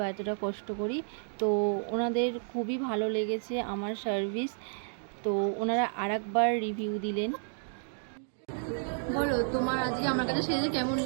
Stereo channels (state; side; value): silent; left; digital silence